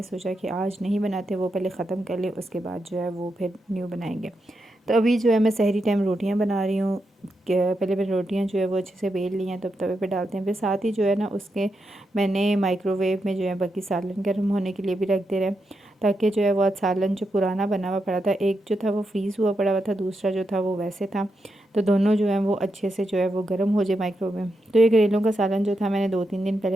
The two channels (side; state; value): both; normal; correlation 0.85